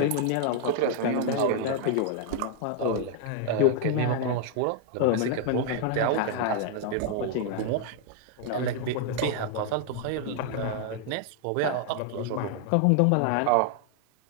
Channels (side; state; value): both; different; correlation 0.00